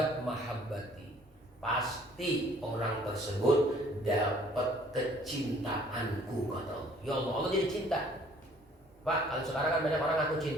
mahabbati. Pasti orang tersebut dapat kecintaanku kata Allah. Ya Allah, Allah jadi cinta. Pak, kalau sekarang kan banyak orang ngaku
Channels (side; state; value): both; normal; correlation 0.57